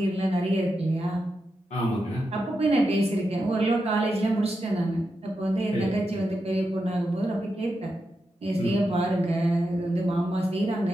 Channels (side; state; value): both; normal; correlation 0.87